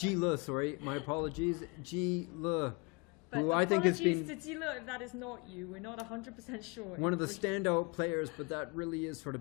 Le, sorry, my apologies. Ji Le, But who I think has been to Zila if that is not you. We're not 100% sure. one of the standout players, but that really is sort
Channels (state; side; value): quieter; right; 29.8 dB